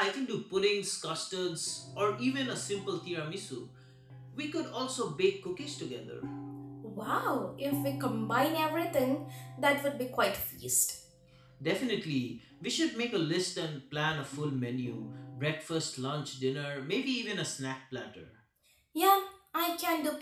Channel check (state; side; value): identical; both; correlation 1.00